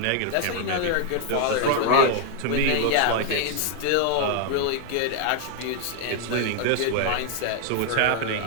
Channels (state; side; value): different; both; correlation 0.00